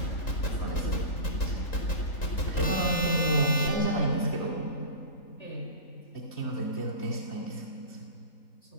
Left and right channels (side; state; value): right; late; 3.8 ms